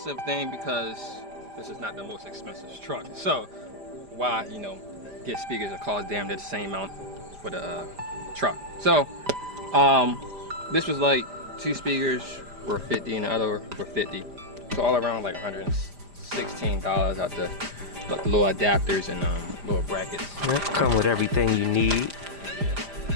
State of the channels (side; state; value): left; late; 5.0 ms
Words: thing because this is not the most expensive truck. So why, get speakers that cost damn near the same amount for the truck. So this was like 2 speakers were 50 and the other were 50. So all around like $116 out the little adapters and little brackets. That come with everything you need.